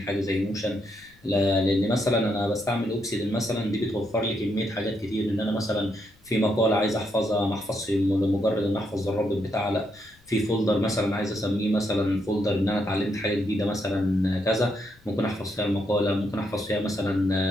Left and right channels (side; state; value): left; noise; rumble, 29 dB below the sound